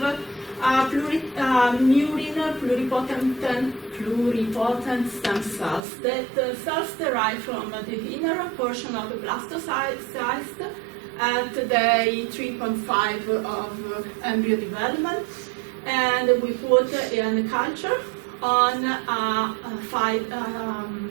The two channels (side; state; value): left; drops out; at 5.8 s